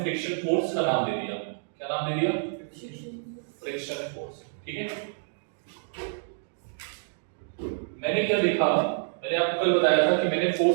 फ्रिक्शन फोर्स का नाम दे दिया। क्या नाम दे दिया, फ्रिक्शन फोर्स, ठीक है। मैंने क्या देखा, मैंने आपको कल बताया था कि मैंने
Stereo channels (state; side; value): silent; left; digital silence